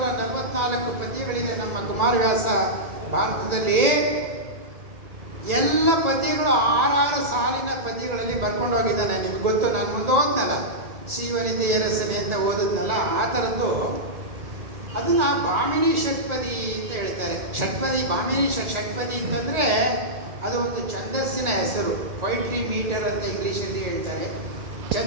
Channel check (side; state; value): left; late; 1.9 ms